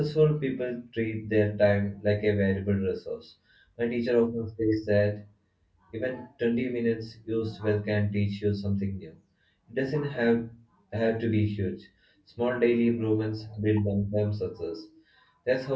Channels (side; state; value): both; identical; correlation 1.00